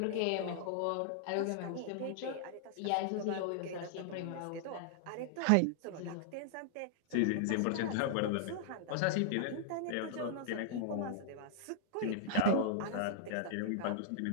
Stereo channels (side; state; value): both; different; correlation -0.01